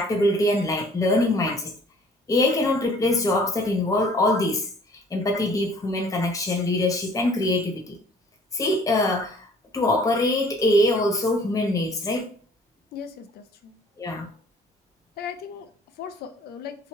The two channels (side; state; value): both; normal; correlation 0.54